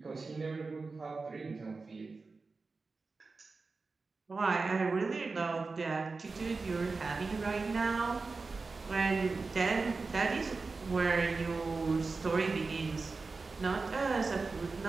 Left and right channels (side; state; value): left; quieter; 4.0 dB